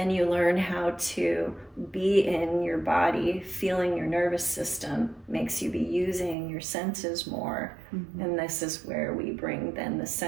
you learn how to be in your body, feeling your nervous system, makes you be using your senses more. And this is where we bring then the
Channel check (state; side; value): drops out; left; at 6.4 s